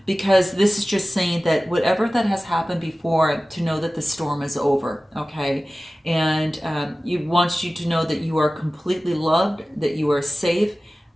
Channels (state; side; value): normal; both; correlation 0.96